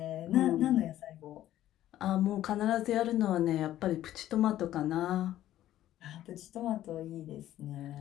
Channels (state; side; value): quieter; right; 13.2 dB